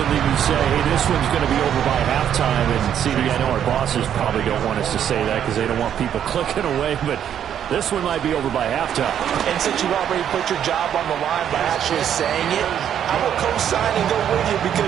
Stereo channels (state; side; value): quieter; left; 9.5 dB